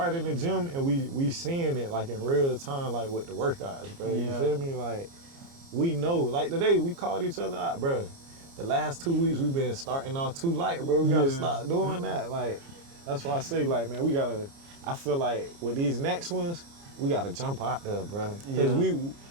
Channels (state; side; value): late; left; 29 ms